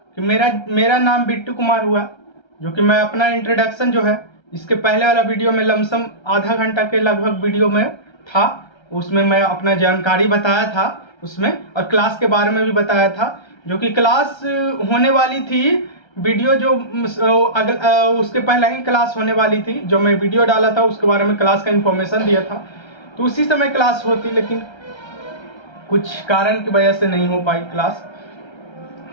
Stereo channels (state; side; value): late; right; 1.3 ms